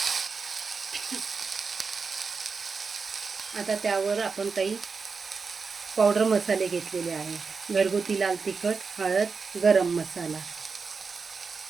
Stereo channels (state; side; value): quieter; left; 5.0 dB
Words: आता त्यावर आपण काही पावडर मसाले घेतलेले आहे। घरगुती लाल तिखट, हळद, गरम मसाला।